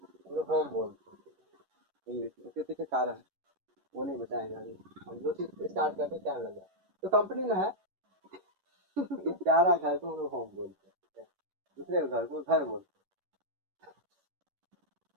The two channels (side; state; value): left; late; 11 ms